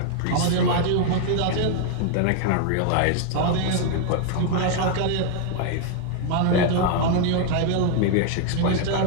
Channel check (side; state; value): both; different; correlation 0.00